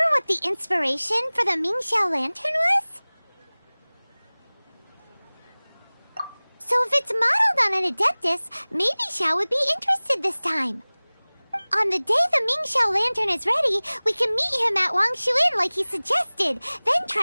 what the inspiration for the Mingxiao lantern was? So if it's modeled on an Adeptus, maybe Xiao would be interested this time. On the day the Mingxiao lantern is ready, we can meet him at Wangshuin like he suggested, then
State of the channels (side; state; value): both; inverted; correlation -1.00